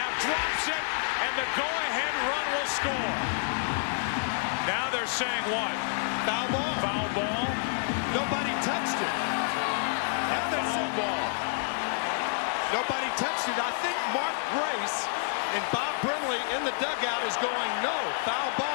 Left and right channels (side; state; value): right; silent; digital silence